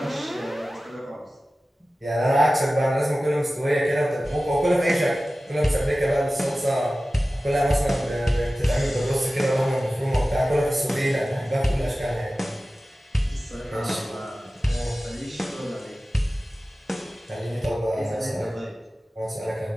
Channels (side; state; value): both; normal; correlation 0.96